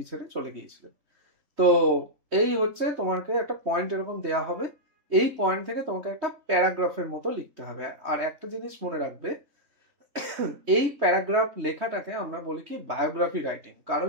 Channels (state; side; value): late; left; 3.2 ms